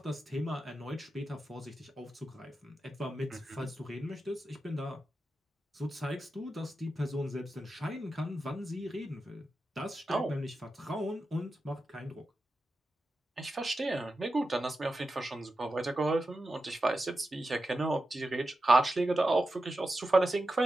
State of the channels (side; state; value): both; normal; correlation 0.90